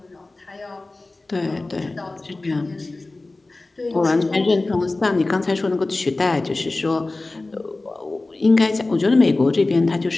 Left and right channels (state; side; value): quieter; right; 3.1 dB